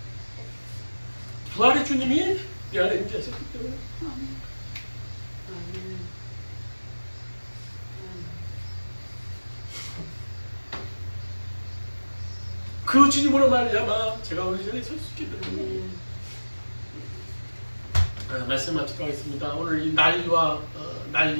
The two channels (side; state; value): both; inverted; correlation -1.00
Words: 부활의 주님이 내 안에 임재하셨기 때문에. 그 주님으로 말미암아 제가 오늘 이 자리에 설 수 있게 됩니다. 말씀 마치도록 하겠습니다. 오늘 이 난리와